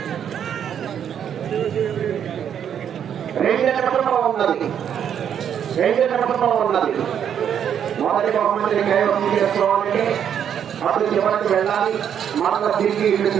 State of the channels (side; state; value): left; quieter; 8.8 dB